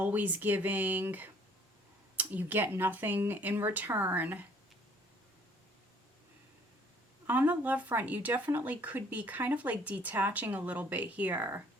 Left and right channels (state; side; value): normal; both; correlation 0.58